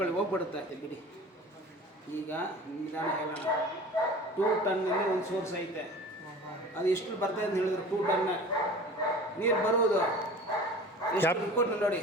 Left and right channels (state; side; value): normal; both; correlation 0.40